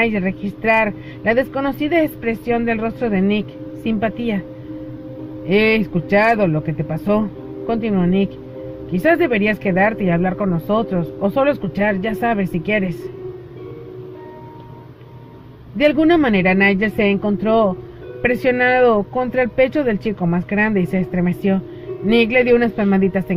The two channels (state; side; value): identical; both; correlation 1.00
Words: registrar la desconocida expresión del rostro de Nick. Simpatía. He escuchado lo que te pasó, continuó Nick. Quizás deberías quedarte y hablar con nosotros, o solo escuchar, ya sabes, si quieres. De alguna manera Nigel se encontró presionado contra el pecho del chico más grande y se estremeció. Nick le dio unas palmaditas